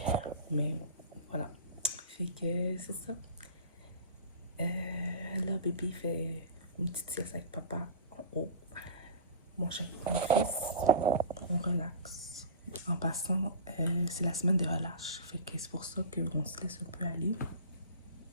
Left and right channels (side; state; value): both; inverted; correlation -0.33